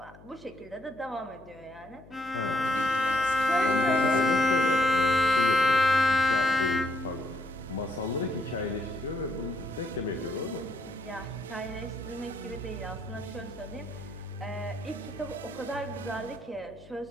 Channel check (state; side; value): noise; left; hum, 22 dB below the sound